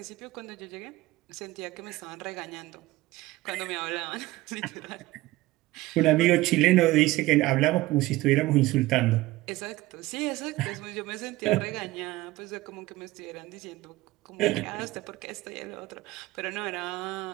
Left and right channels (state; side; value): quieter; left; 18.3 dB